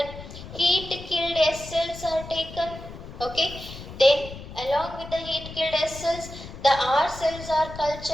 Heat killed S cells are taken. Okay, then along with the heat killed S cells, the R cells are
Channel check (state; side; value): noise; left; rumble, 13 dB below the sound